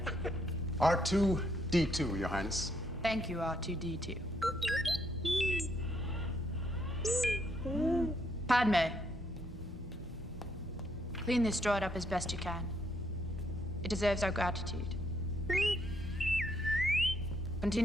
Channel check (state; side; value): normal; both; correlation 0.72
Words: R2-D2, Your Highness. Thank you, R2-D2. Padme. Clean this droid up as best you can. It deserves our gratitude.